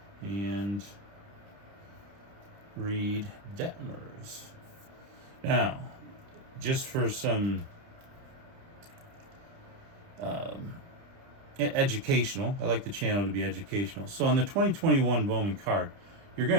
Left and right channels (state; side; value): late; left; 30 ms